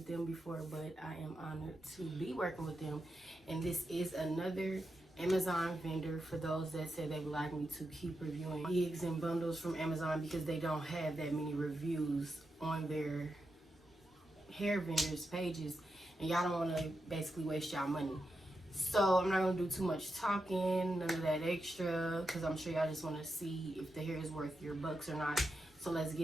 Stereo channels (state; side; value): normal; both; correlation 0.87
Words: them before, but I am honored to be working with them. And this is another Amazon vendor for those that said they would like me to keep reviewing gigs and bundles from Amazon because they don't have that many reviews on their hair vendors pages, and y'all don't want to basically waste y'all money. So I'm not going to do too much talking, none of that extra, because I'm sure y'all just want to see if the hair is worth your bucks or not. So let's